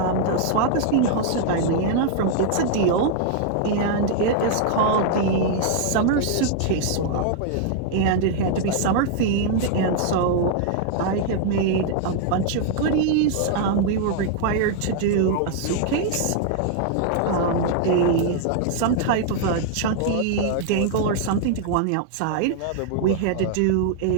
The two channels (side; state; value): both; different; correlation -0.01